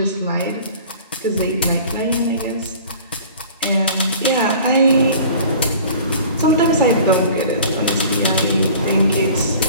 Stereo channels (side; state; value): both; inverted; correlation -0.45